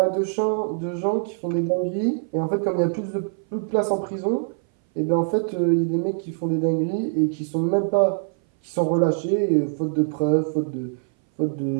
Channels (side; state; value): left; silent; 59 dB below the other